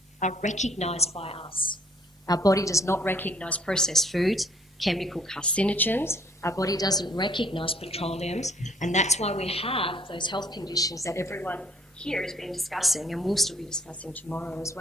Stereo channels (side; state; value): both; normal; correlation 0.61